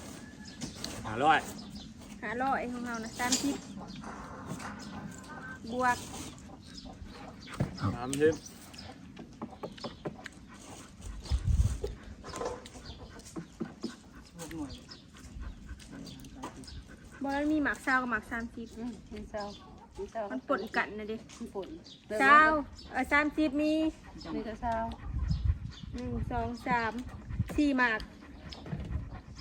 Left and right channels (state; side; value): identical; both; correlation 1.00